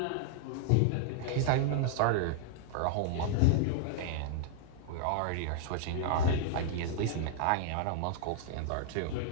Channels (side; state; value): both; different; correlation -0.01